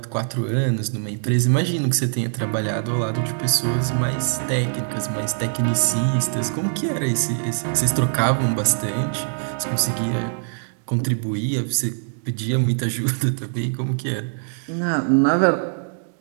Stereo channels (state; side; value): silent; left; digital silence